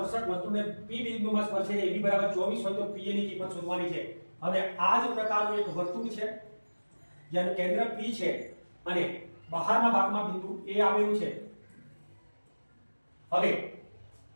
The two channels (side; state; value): both; inverted; correlation -1.00